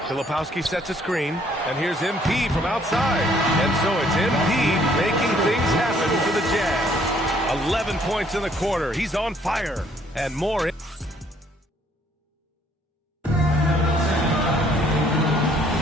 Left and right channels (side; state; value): both; normal; correlation 0.63